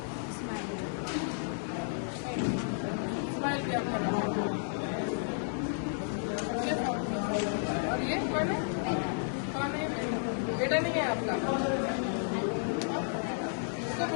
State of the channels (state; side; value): silent; right; 56 dB below the other